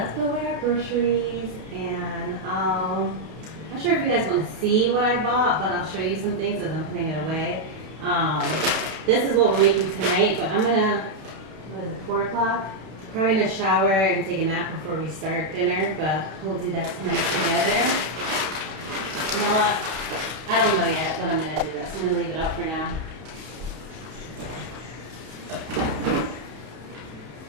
put away our groceries, and I'm not sure if you guys want to see what I bought, but I'll show you some things as I'm putting it away. This is what we're making tonight, but I'm gonna, what is it, 4 o'clock? Probably gonna shower and take a nap before we start dinner, but we'll do that tonight together. You know what? I don't know yet, but I'm gonna do that, so I'm gonna leave it up for now.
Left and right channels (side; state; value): left; late; 31 ms